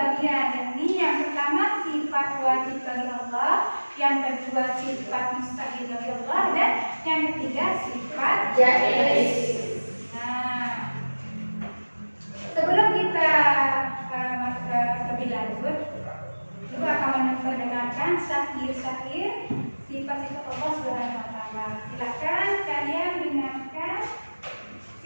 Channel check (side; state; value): both; inverted; correlation -1.00